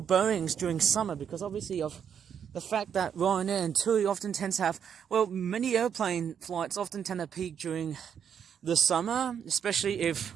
Boeings during summer because obviously of the fact that Ryanair and TUI often tend to have, well, many airplane flights often tend to peak during the summer, especially if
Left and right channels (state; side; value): quieter; left; 8.1 dB